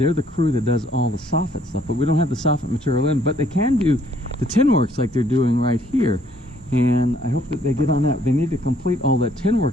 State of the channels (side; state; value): both; normal; correlation 0.64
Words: the crew that does all the soffit stuff, but we don't have the soffit material in, but they can do the tin works like they're doing right here. And I hope that they get on that. They need to complete all that tin